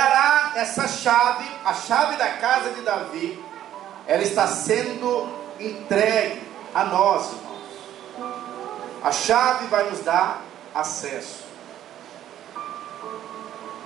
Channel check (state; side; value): quieter; left; 11.7 dB